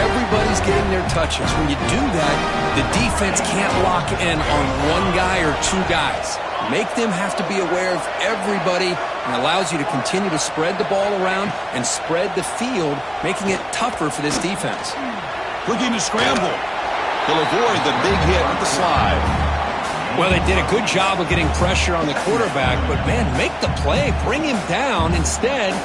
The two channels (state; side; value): identical; both; correlation 1.00